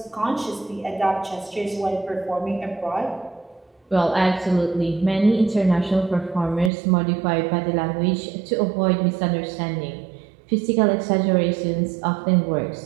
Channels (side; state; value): left; drops out; at 6.7 s